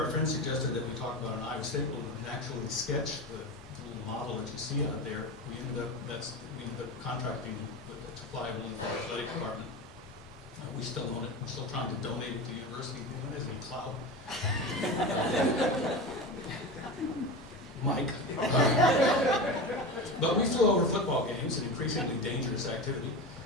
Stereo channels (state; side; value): normal; both; correlation 0.25